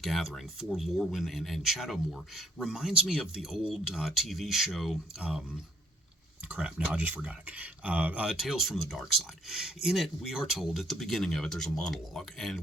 for Lorwyn and Shadowmoor reminds me of the old TV show crap, now I just forgot it. Tales from the Dark Side. In it, we are told at the beginning of it, there's a monologue,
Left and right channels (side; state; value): both; normal; correlation 0.67